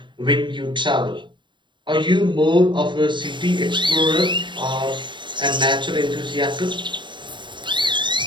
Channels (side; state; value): left; late; 0.23 ms